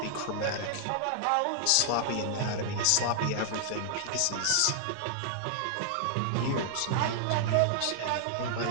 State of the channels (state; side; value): different; both; correlation -0.01